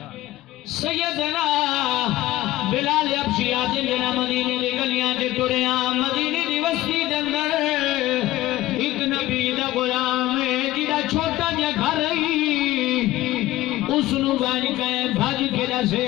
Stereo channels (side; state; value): right; quieter; 16.3 dB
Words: سیدنا بلال حبشی آتے جنا مدینے دی گلیاں تے ٹریاں مدینے دی بستی دے اندر ایک نبی دا غلام ہے جڑا چھوٹا جا گھر اس نو بن کے بھج کے